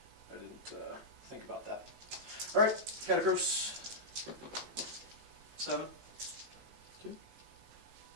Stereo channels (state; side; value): late; left; 18 ms